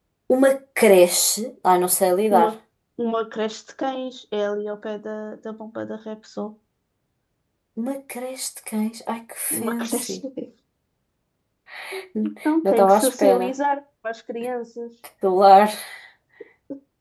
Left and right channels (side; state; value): both; identical; correlation 1.00